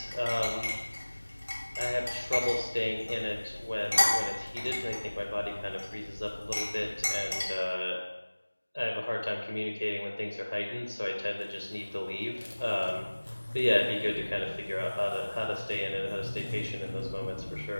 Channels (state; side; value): inverted; both; correlation -1.00